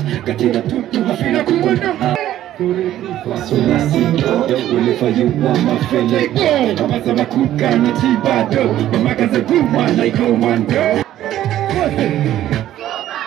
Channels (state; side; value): quieter; left; 12.8 dB